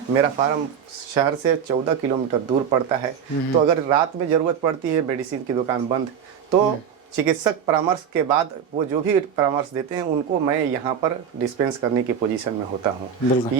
मेरा फार्म शहर से 14 किलोमीटर दूर पड़ता है। तो अगर रात में ज़रूरत पड़ती है, मेडिसिन की दुकान बंद, तो चिकित्सक परामर्श के बाद वो जो भी परामर्श देते हैं उनको मैं यहाँ पर डिस्पेंस करने की पोजीशन में होता हूँ।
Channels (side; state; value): left; quieter; 7.7 dB